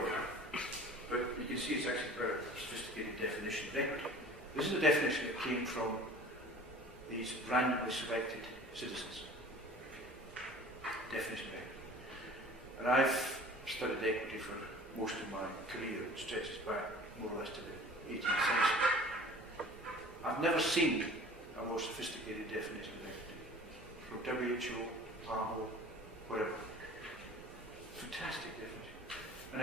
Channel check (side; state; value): both; normal; correlation 0.45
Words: that, but you can see it's actually a very sophisticated definition of equity. This is a definition that came from these randomly selected citizens. Definition of equity. And I've studied equity for most of my career, it stretches back more or less to the 18th century. I've never seen a more sophisticated definition of equity. From WHO, PAHO, whatever. Fantastic definition. And